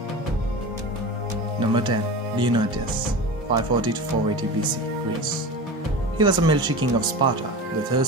Number 10. Leonidas, 540 to 480 BC, Greece. He was a military king of Sparta, the third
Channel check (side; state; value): both; normal; correlation 0.30